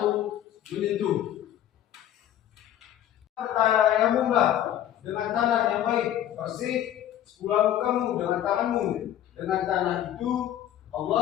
menyentuh, tayamumlah dengan tanah yang baik, bersih, sepulah mukamu dengan tanganmu. Dengan tanah itu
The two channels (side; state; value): right; quieter; 11.5 dB